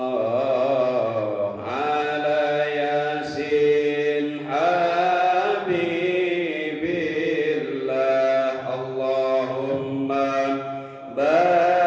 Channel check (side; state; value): both; identical; correlation 1.00